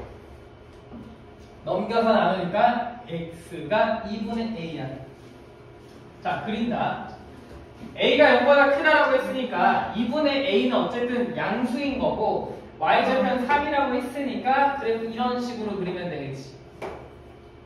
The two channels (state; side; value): identical; both; correlation 1.00